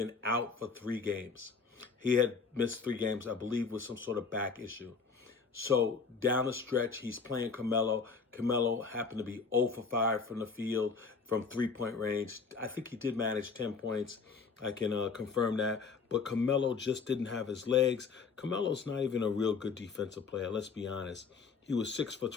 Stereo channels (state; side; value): quieter; right; 5.1 dB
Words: out for 3 games. He had missed 3 games, I believe, with some sort of back issue. So down the stretch, he's playing Carmelo. Carmelo happened to be 0 for 5 from the field, from 3-point range. I think he did manage 10 points. I can confirm that. But Carmelo just didn't have his legs. Carmelo's not even a real good defensive player, let's be honest. He was 6 for